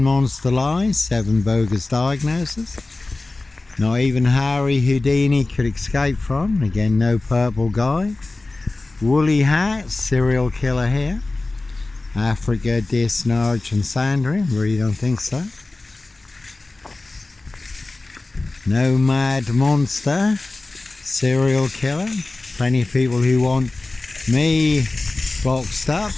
monster lies, 7 bogus diagnoses. Not even Harry Houdini could escape from. Again, no purple guy. Woolly hat, serial killer here. Africa, Dis, Norwich and Sandringham. Really don't think so. No mad monster, serial killer. Plenty of people who want me boxed up,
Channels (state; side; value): quieter; right; 3.2 dB